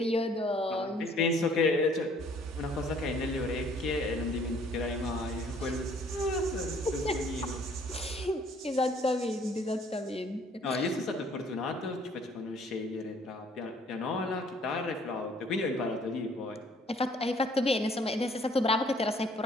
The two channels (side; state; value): both; normal; correlation 0.59